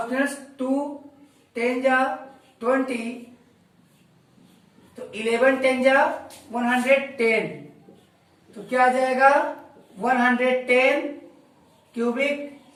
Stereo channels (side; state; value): both; identical; correlation 1.00